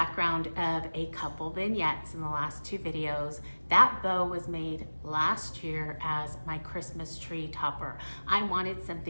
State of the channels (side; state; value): both; inverted; correlation -1.00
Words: of a couple vignettes in the last 2 videos. That bow was made last year as my Christmas tree topper. I wanted